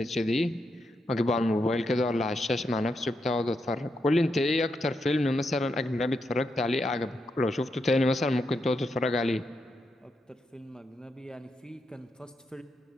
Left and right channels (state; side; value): normal; both; correlation 0.83